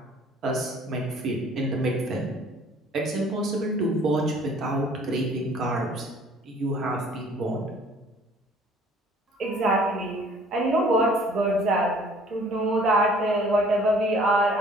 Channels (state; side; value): normal; both; correlation 0.54